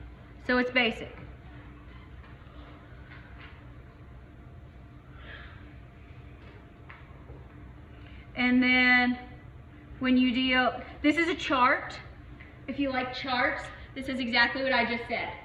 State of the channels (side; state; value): both; identical; correlation 1.00